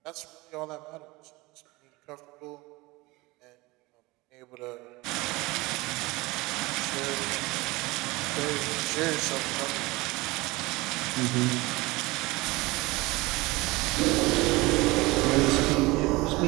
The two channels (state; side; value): quieter; left; 22.2 dB